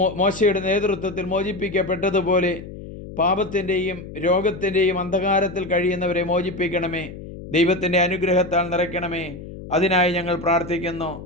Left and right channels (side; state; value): left; noise; hum, 13 dB below the sound